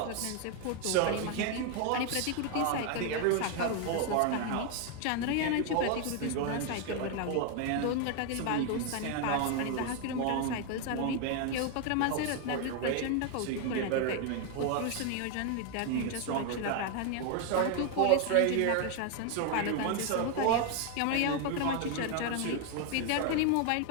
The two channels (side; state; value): both; different; correlation 0.01